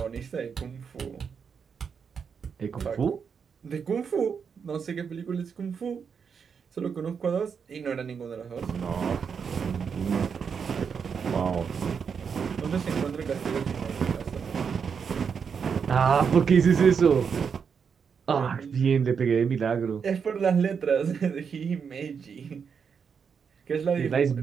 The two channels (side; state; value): left; quieter; 6.5 dB